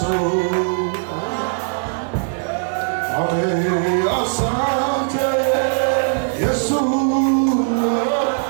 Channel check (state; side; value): silent; left; digital silence